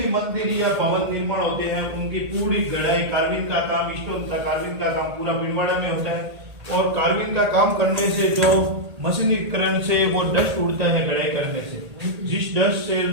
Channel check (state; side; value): late; left; 1.8 ms